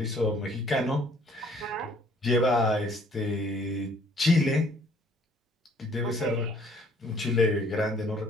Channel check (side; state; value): both; normal; correlation 0.59